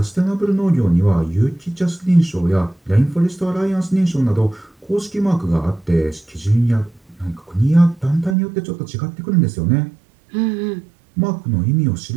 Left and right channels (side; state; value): left; drops out; at 8.3 s